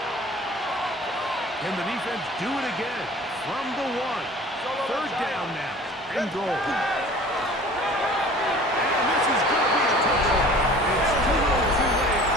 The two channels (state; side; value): normal; both; correlation 0.45